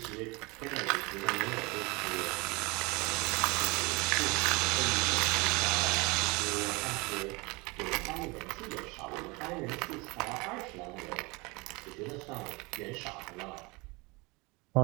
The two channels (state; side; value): quieter; left; 26.2 dB